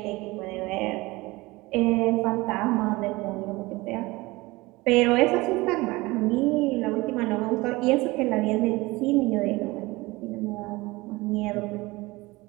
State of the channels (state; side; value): quieter; left; 21.7 dB